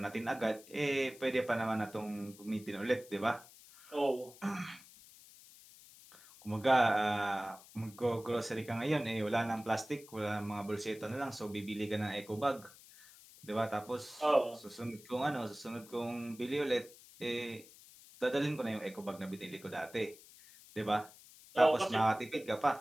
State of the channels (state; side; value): noise; left; hiss, 21 dB below the sound